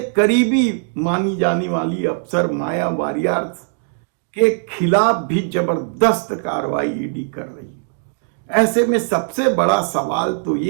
करीबी मानी जाने वाली अफसर माया वारियर के खिलाफ भी जबरदस्त कार्रवाई ईडी कर रही है। ऐसे में सबसे बड़ा सवाल तो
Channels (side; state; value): left; silent; digital silence